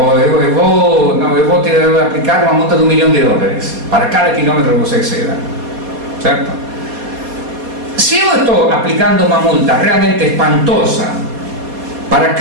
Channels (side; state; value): left; late; 4.2 ms